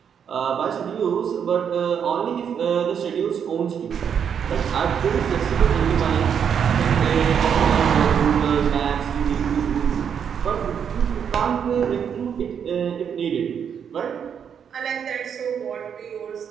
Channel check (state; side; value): quieter; left; 7.7 dB